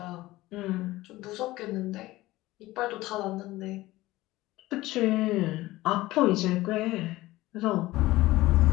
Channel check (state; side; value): quieter; right; 18.0 dB